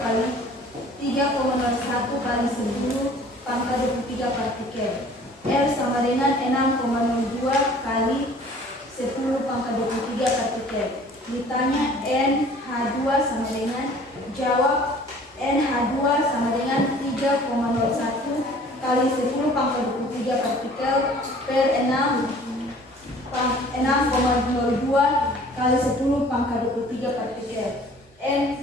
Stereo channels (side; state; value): both; normal; correlation 0.50